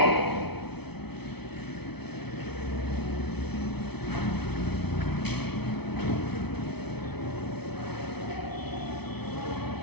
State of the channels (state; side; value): late; right; 0.98 ms